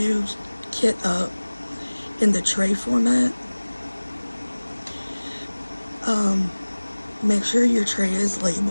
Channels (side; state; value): both; inverted; correlation -1.00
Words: kit up in the tray format, make sure your tray is